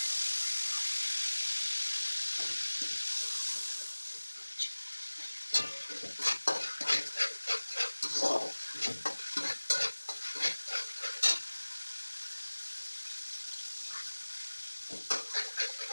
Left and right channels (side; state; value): both; inverted; correlation -1.00